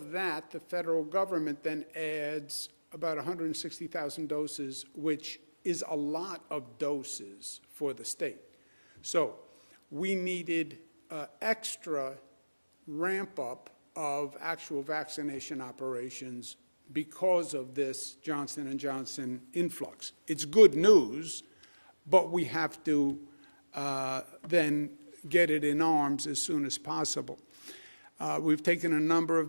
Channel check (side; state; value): both; inverted; correlation -1.00